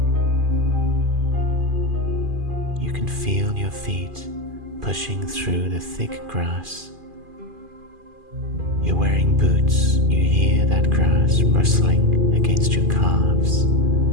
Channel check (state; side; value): late; left; 2.4 ms